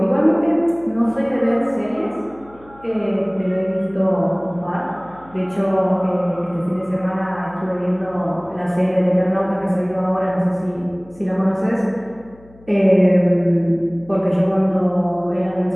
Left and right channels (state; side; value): noise; left; hum, 25 dB below the sound